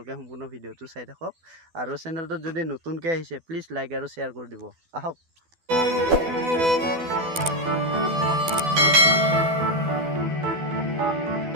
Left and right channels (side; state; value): left; late; 12 ms